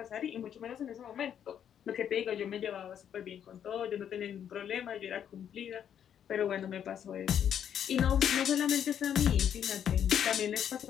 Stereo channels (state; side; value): quieter; right; 9.1 dB